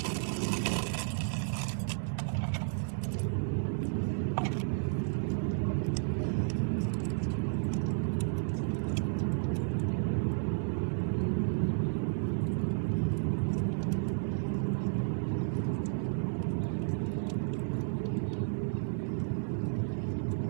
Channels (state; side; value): silent; left; digital silence